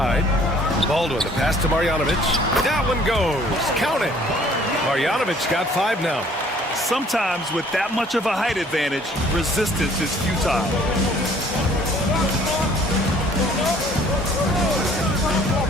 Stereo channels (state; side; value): normal; both; correlation 0.57